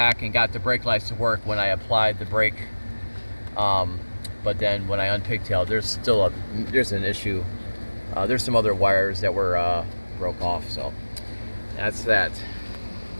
and got the brake lights to work when I applied the brake. But then when I unpigtailed, there's an issue. There's some other wires that were broke off, so that's that.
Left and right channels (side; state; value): both; inverted; correlation -1.00